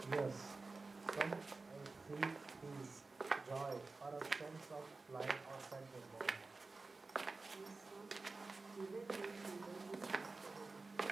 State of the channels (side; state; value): left; quieter; 3.7 dB